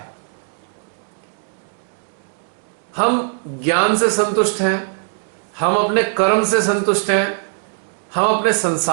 हम ज्ञान से संतुष्ट हैं, हम अपने कर्म से संतुष्ट हैं, हम अपने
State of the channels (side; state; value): left; silent; digital silence